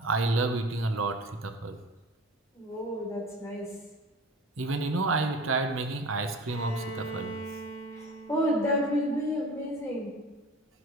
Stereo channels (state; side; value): normal; both; correlation 0.39